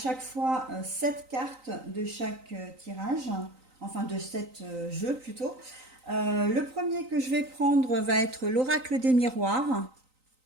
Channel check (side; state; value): left; late; 3.9 ms